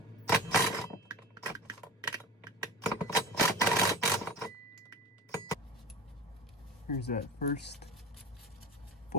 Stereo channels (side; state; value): both; normal; correlation 0.31